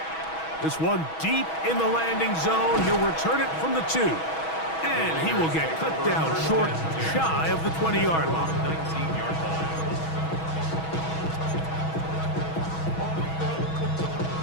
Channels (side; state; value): right; late; 6.2 ms